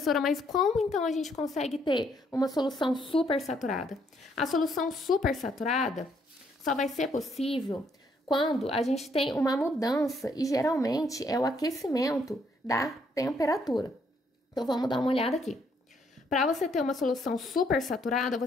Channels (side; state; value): both; normal; correlation 0.70